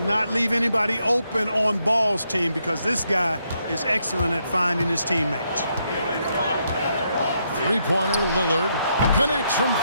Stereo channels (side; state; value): both; inverted; correlation -0.78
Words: leave anybody open on Ball's team because this guy is excellent at finding his teammates. Three-pointer, Lillard connects from